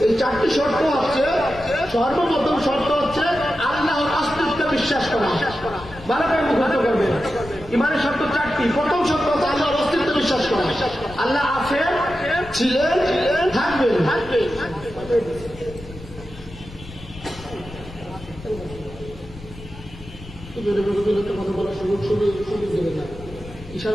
এই 4টি শর্ত হচ্ছে, সর্বপ্রথম শর্ত হচ্ছে আল্লাহর অস্তিত্বে বিশ্বাস করা। ভালো করে মুখস্থ করবেন, ইমানের শর্ত 4টি। প্রথম শর্ত হচ্ছে আল্লাহর অস্তিত্বে বিশ্বাস করা, আল্লাহ আছেন, ছিলেন, থাকবেন। কথা বলার সুযোগ দেবে না,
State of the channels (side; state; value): left; noise; rumble, 16 dB below the sound